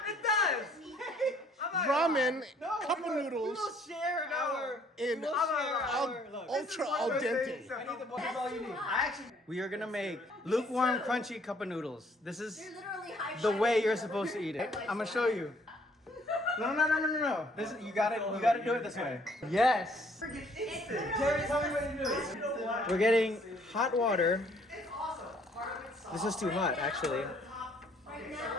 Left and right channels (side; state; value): both; normal; correlation 0.62